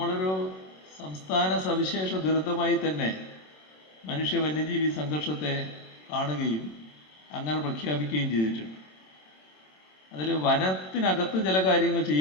സംസ്ഥാന സവിശേഷ ദുരന്തമായി തന്നെ മനുഷ്യ വന്യജീവി സംഘർഷത്തെ കാണുകയും അങ്ങനെ പ്രഖ്യാപിക്കുകയും ചെയ്തിട്ടുണ്ട്. അതിൽ വനത്തിനകത്ത് ചില കാര്യങ്ങൾ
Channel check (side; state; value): right; late; 27 ms